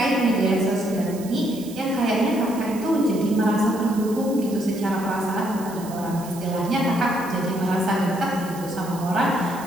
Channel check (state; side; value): noise; right; hiss, 17 dB below the sound